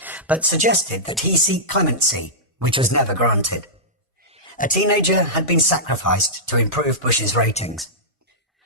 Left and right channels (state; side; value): normal; both; correlation -0.14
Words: but suggested that he seek clemency, which was never granted. A teenager had been sacrificed to improve Bush's ratings.